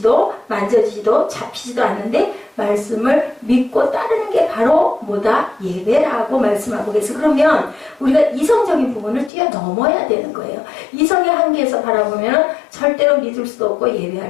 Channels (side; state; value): right; drops out; at 9.3 s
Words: 만져지지도 잡히지도 않는데 말씀을 믿고 따르는 게 바로 뭐다? 예배라고 말씀하고 계세요. 그러면 우리가 이성적인 부분을 뛰어넘어야 되는 거예요. 이성의 한계에서 바라보면 절대로 믿을 수도 없고